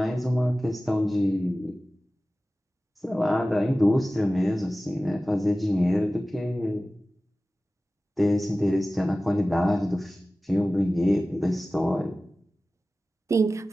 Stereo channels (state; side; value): normal; both; correlation 0.96